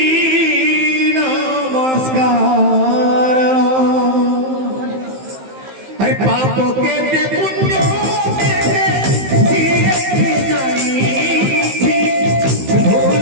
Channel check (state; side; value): late; left; 15 ms